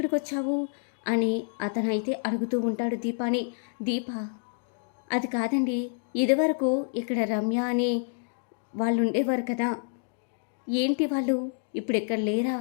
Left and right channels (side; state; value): right; silent; digital silence